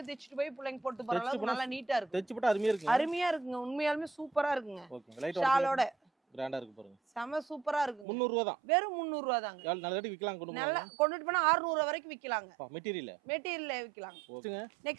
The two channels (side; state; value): left; drops out; at 8.1 s